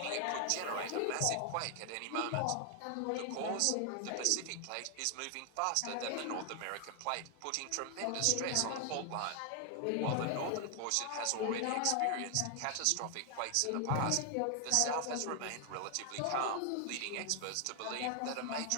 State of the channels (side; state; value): both; different; correlation 0.00